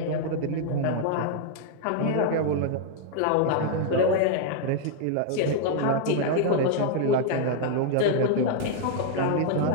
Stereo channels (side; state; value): both; different; correlation 0.00